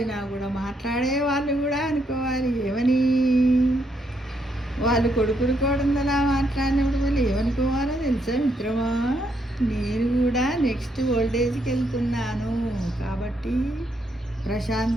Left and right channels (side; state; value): both; normal; correlation 0.76